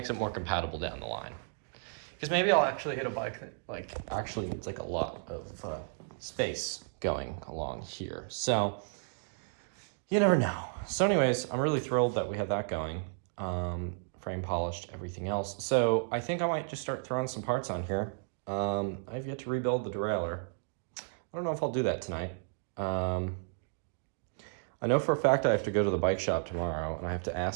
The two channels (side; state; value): left; silent; digital silence